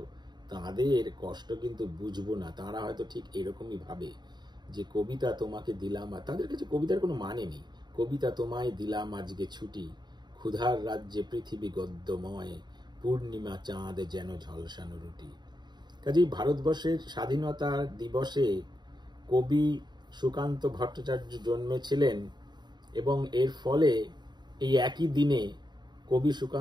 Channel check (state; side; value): late; left; 0.21 ms